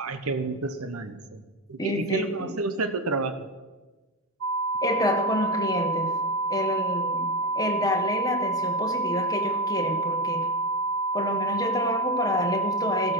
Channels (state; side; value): normal; both; correlation 0.13